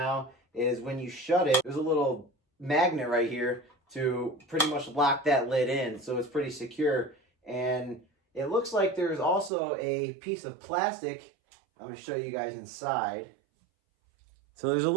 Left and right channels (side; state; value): left; drops out; at 9.5 s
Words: is when you shut it, there's a little magnet right here to pretty much lock that lid in. So it's pretty secure. And it looks like there's also a piece of plastic. I'm going to show you guys inside. So there's a